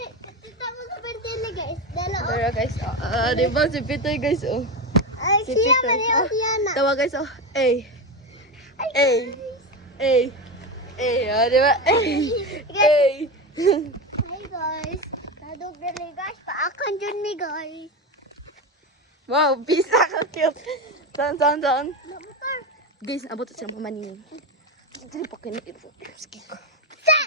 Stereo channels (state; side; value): normal; both; correlation 0.18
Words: Pero guys, di ba si Pitoy guys, oh. Si Pitoy. Tawa guys, oh. Ay. Ay. Ay. Ay, di ba? Ay. Ay. Hi guys. Kadug dali guys, paakan dyan mi guys. Wow, pisa ka cute. Saan? Motor. Guys, abot sa mga manining. Dili pa kinit. Sige ko. Sa!